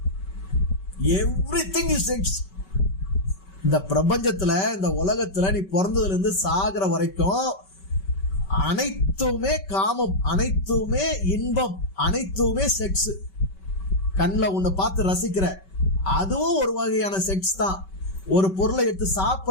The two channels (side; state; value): right; late; 5.2 ms